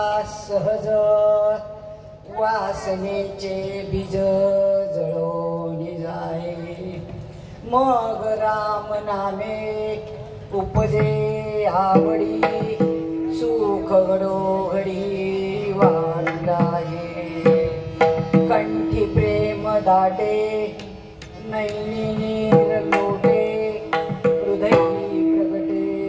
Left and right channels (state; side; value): identical; both; correlation 1.00